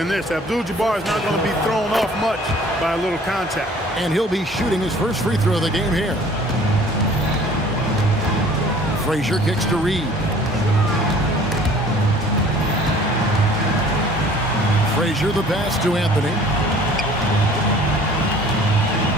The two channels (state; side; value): normal; both; correlation 0.51